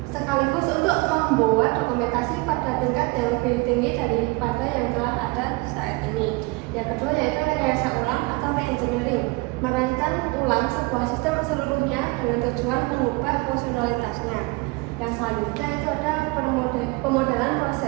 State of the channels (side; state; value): left; quieter; 25.8 dB